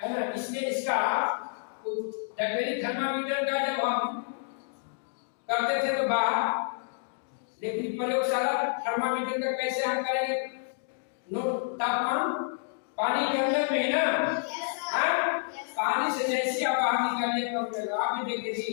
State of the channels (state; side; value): silent; right; digital silence